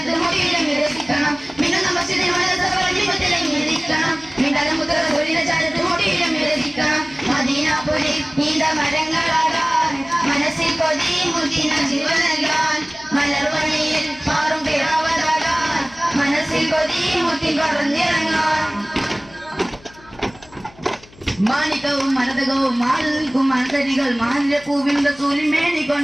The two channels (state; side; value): noise; left; hum, 24 dB below the sound